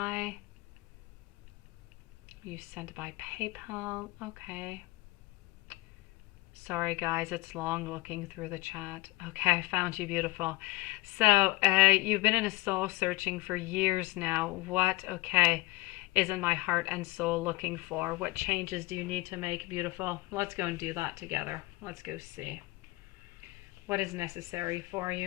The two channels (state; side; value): quieter; right; 21.0 dB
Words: You sent by PayPal. Okay. Sorry guys, it's long looking through the chat. Okay, I found you, beautiful. So you've been in a soul searching for years now. What, okay, is in my heart and soul looking for? What changes do you need to make, beautiful? Let's go and do that together. Let's go see what is necessary for